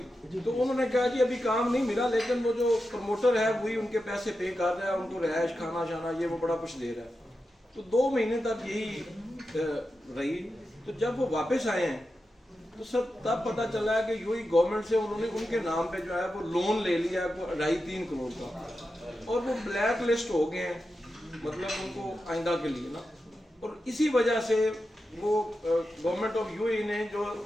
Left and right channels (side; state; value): both; normal; correlation 0.90